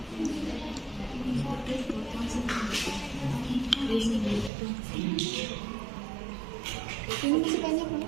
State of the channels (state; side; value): drops out; left; at 4.5 s